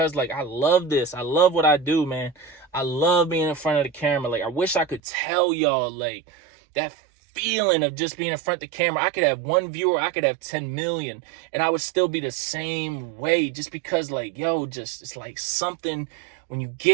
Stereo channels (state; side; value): drops out; left; at 5.0 s